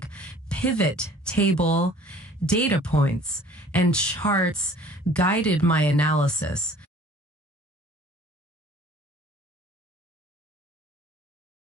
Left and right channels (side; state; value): both; normal; correlation 0.51